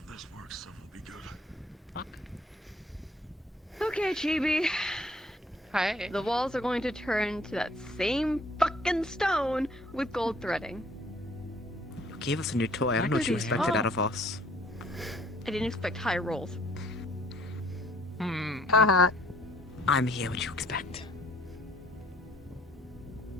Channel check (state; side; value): normal; both; correlation 0.59